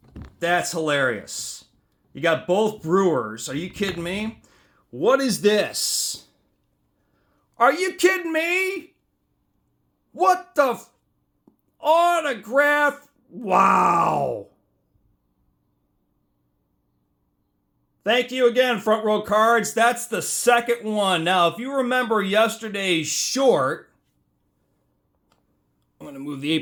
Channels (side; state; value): both; identical; correlation 1.00